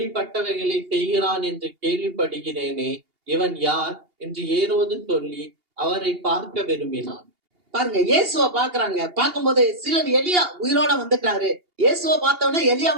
செய்கிறான் என்று கேள்விப்படுகிறேனே, இவன் யார் என்று ஏரோது சொல்லி அவரை பார்க்க விரும்பினான். பாருங்க, இயேசுவை பாக்குறாங்க. பார்க்கும்போது சிலர் எலியா உயிரோட வந்துட்டாரு, இயேசுவை பார்த்தவொடனே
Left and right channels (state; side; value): late; left; 2.8 ms